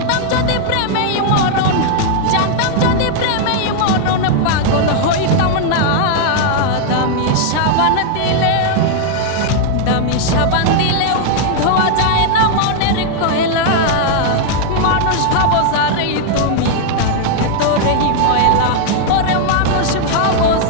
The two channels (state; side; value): different; both; correlation -0.01